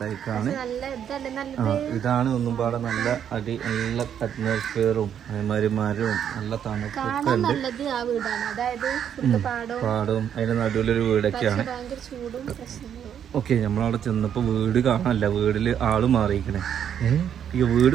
ഇതാണ് ഒന്നും പാടെ നല്ല നല്ല അറ്റ്മോസ്ഫിയറും അതേമാതിരി മരവും നല്ല തണുപ്പൊക്കെ ഉണ്ട്. പാടവും അതിന്റെ നടുവിലൊരു വീടൊക്കെയാണ്. ഓക്കെ, നമ്മളവിടെ ചെന്നപ്പോ വീട് കാണാനല്ല, വീട്ടില് ആള് മാറിയിരിക്കണേ. ഈ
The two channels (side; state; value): left; quieter; 9.0 dB